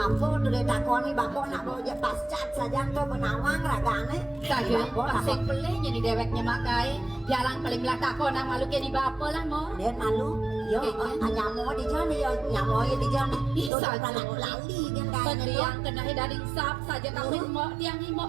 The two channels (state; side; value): drops out; left; at 13.7 s